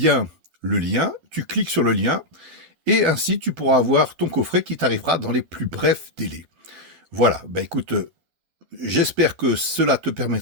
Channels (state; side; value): late; left; 12 ms